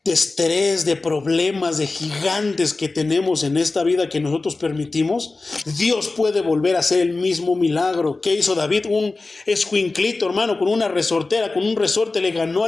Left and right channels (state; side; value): quieter; right; 3.5 dB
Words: estrés, de problemas, de gigantes que tenemos en esta vida que nosotros permitimos, Dios puede volver a hacer el mismo milagro. ¿Qué hizo David? Un escuinclito, hermano, con una resortera, con un resorte le ganó